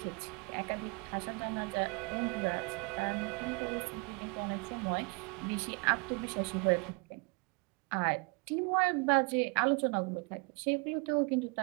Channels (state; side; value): quieter; left; 30.8 dB